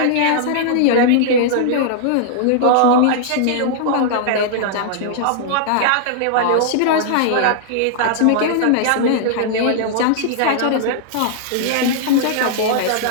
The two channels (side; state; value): both; different; correlation -0.01